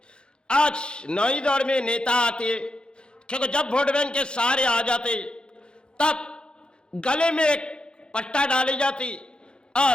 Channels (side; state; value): right; late; 0.051 ms